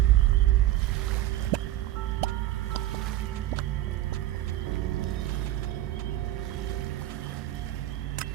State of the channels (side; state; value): left; quieter; 14.1 dB